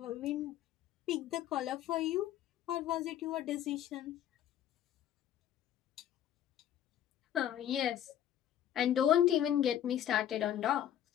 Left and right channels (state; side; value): quieter; right; 11.0 dB